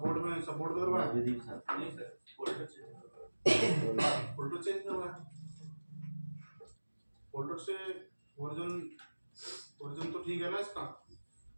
में, सपोर्ट करवाया फोल्डर चेंज करवाया। फोल्डर से वर्जन तो ठीक है ना इसका?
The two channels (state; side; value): inverted; both; correlation -1.00